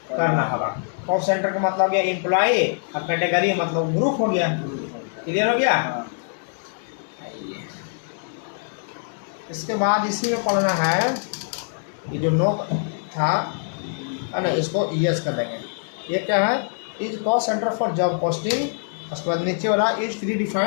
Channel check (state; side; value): silent; right; digital silence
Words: करना होगा। कॉस्ट सेंटर का मतलब गया एम्प्लॉई और कैटेगरी मतलब ग्रुप हो गया। क्लियर हो गया। इसके बाद इसी में पढ़ना है कि जो नो था ना, इसको यस कर देंगे। ये क्या है, is cost centre for job posting, उसके बाद नीचे वाला is pre